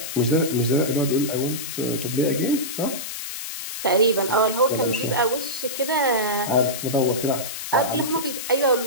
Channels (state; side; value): noise; left; hiss, 7 dB below the sound